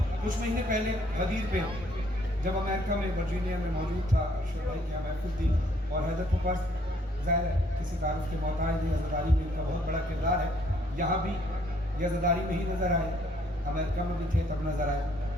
कुछ महीने पहले गदीर पे जब अमेरिका में वर्जीनिया में मौजूद था, अरशद भाई की यहाँ महफिल थी और हैदर के पास ज़ाहिर है किसी तारुफ के मोहताज नहीं, अज़ादारी में इनका बहुत बड़ा किरदार है। यहाँ भी ये अज़ादारी में ही नज़र आए, अमेरिका में भी थे तब नज़र आए।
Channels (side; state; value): both; normal; correlation 0.65